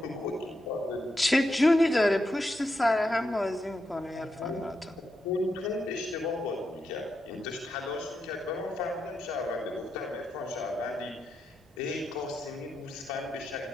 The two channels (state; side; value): normal; both; correlation 0.85